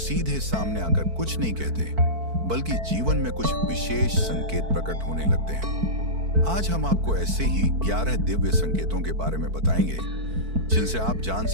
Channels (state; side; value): late; left; 4.5 ms